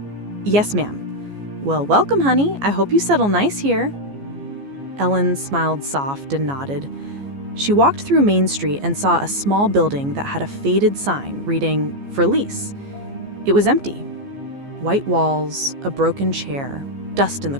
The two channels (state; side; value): late; left; 14 ms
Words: "Yes, ma'am." "Well, welcome, honey. I hope you settle nice here." Ellen smiled soft and nodded. She walked through Main Street and saw a small building that had a faded sign reading, "For lease." It was empty. White walls, a broken chair, dust in the